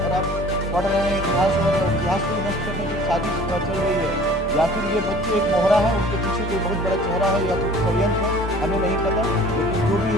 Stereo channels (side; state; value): both; normal; correlation 0.48